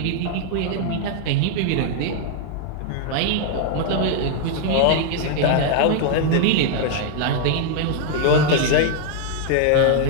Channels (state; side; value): different; both; correlation 0.00